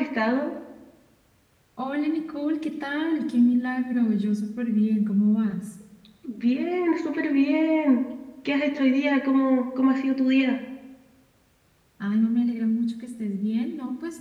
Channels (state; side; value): identical; both; correlation 1.00